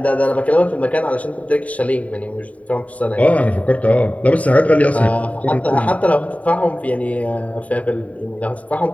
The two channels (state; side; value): late; right; 0.068 ms